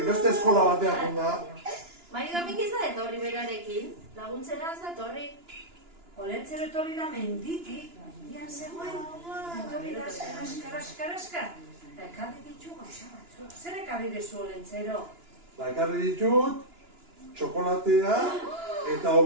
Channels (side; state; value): left; late; 2.9 ms